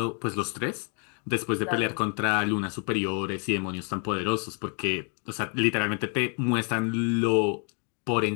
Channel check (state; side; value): quieter; right; 39.4 dB